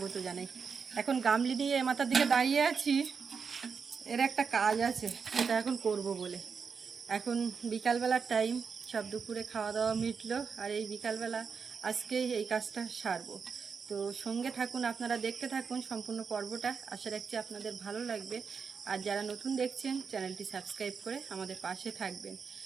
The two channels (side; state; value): left; quieter; 5.8 dB